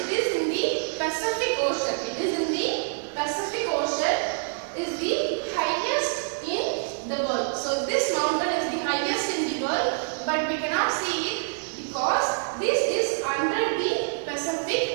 is in the Pacific Ocean. It is in the Pacific Ocean, is the highest in the world. So this mountain is the highest in the world, but we cannot see it because this is under the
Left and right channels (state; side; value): silent; left; digital silence